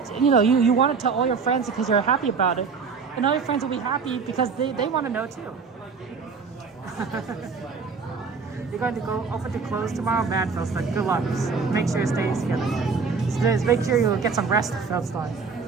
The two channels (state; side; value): quieter; left; 5.2 dB